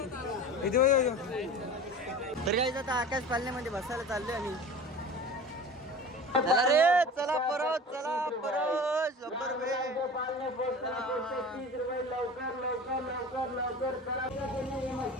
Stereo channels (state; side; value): normal; both; correlation 0.36